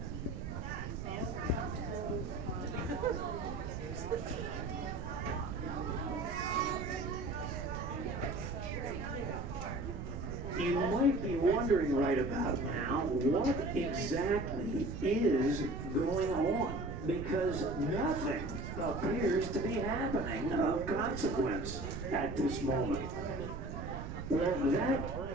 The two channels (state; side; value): noise; right; rumble, 6 dB below the sound